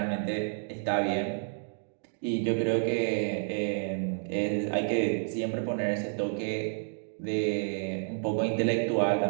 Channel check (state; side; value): silent; left; digital silence